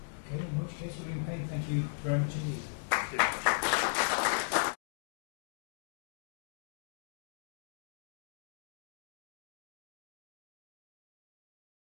Okay, in which case, William Payne, thank you very much indeed. Thank you.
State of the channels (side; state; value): right; silent; digital silence